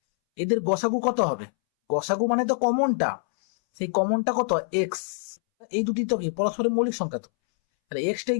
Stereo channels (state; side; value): silent; right; 62 dB below the other